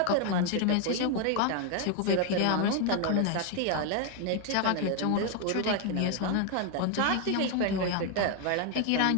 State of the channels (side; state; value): both; different; correlation 0.01